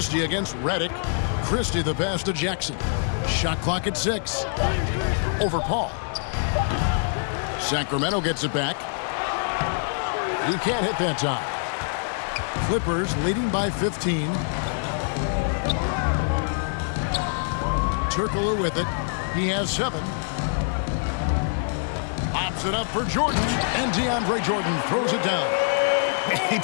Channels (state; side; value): silent; right; digital silence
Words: against Redick. Christie the pass to Jackson. Shot clock at 6. Over Paul. Sacramento gets it back. He can't hit that time. Clippers leading by 15. Turkoglu with it. He has 7. Pops it up for Jordan. And DeAndre Jordan throws it down. He